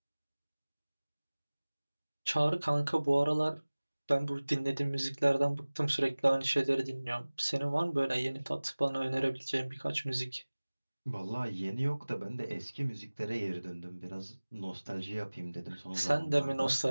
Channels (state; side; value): inverted; both; correlation -1.00